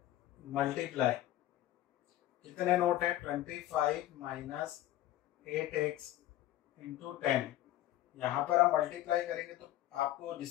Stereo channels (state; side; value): quieter; right; 14.3 dB